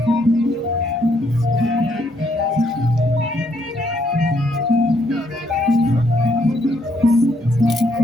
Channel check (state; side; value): normal; both; correlation 0.72